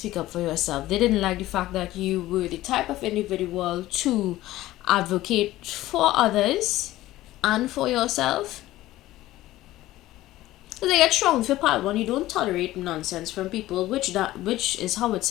up for yourself. They didn't like the fact that you were the type of individual to advocate for others and for yourself. So they get strong for pile 1. You don't tolerate nonsense from people, which is how it's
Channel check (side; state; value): right; quieter; 16.0 dB